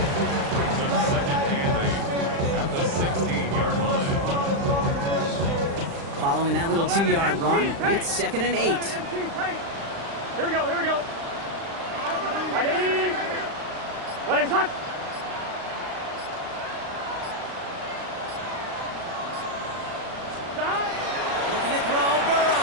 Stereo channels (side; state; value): left; late; 36 ms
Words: At the 16-yard line. Following that little 2-yard run, it's second and 8. Here we go. Right 80. What is that?